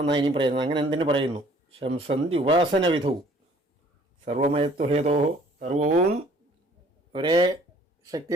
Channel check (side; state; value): both; normal; correlation 0.56